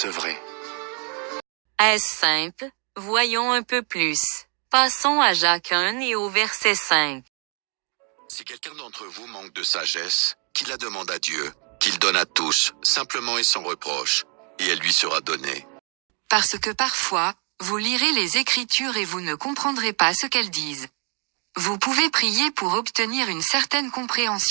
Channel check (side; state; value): left; quieter; 37.2 dB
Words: Est-ce simple? Voyons un peu plus. Passons à Jacques 1 et au verset 5. Si quelqu'un d'entre vous manque de sagesse, qu'il la demande à Dieu, qu'il donne à tous, simplement et sans reproche, et elle lui sera donnée. Parce que parfois, vous lirez les Écritures et vous ne comprendrez pas ce qu'elles disent. Vous pouvez prier pour obtenir une certaine